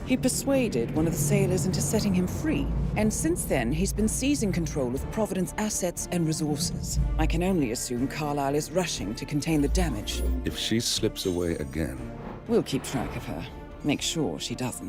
He persuaded one of the sailors into setting him free. And since then, he's been seizing control of Providence assets and resources. I can only assume Carlisle is rushing to contain the damage. If she slips away again... We'll keep track of her. Make sure she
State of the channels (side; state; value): both; identical; correlation 1.00